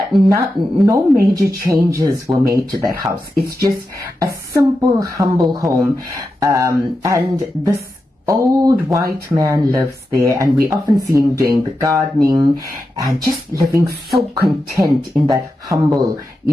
no major changes were made to that house. It's just a simple, humble home. And this old white man lives there, and we often see him doing the gardening and just living so content in that humble,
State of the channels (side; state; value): both; normal; correlation 0.89